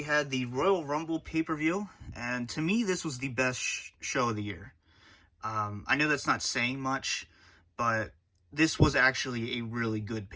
had the Royal Rumble pay-per-view. And to me, this was the best show of the year. I know that's not saying much, but this was actually a really good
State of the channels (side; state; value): both; identical; correlation 1.00